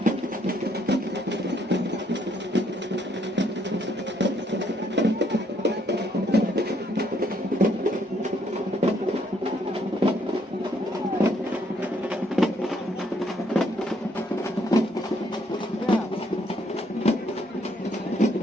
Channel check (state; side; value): normal; both; correlation 0.69